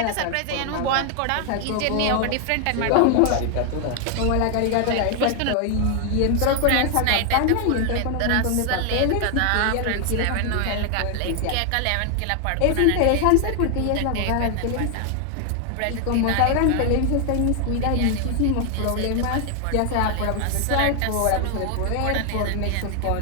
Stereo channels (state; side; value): different; both; correlation 0.00